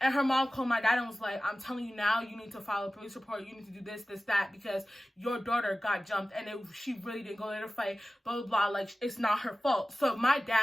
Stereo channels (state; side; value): normal; both; correlation 0.96